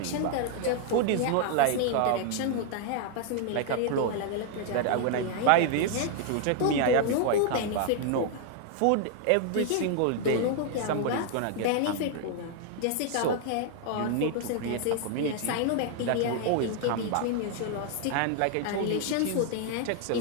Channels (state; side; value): different; both; correlation 0.00